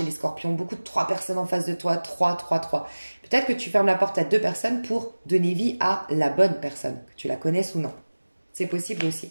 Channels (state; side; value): inverted; both; correlation -1.00